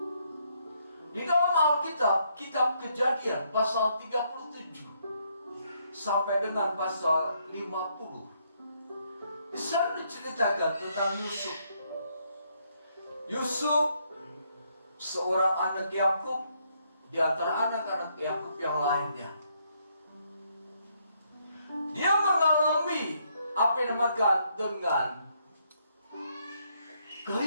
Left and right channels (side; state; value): both; inverted; correlation -0.73